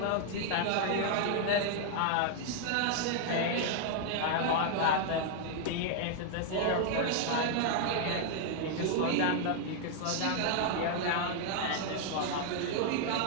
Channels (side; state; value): both; different; correlation 0.00